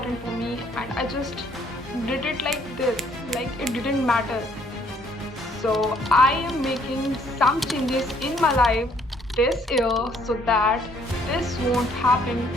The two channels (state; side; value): normal; both; correlation 0.64